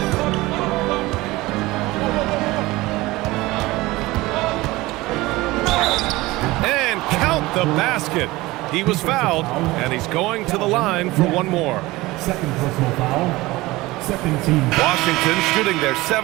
And count the basket. He was fouled, and he's going to the line for one more. Second personal foul. Second team. Washington shooting their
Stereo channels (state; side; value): quieter; left; 19.9 dB